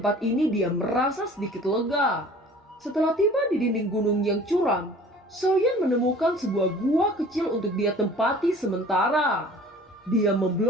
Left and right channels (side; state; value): both; normal; correlation 0.47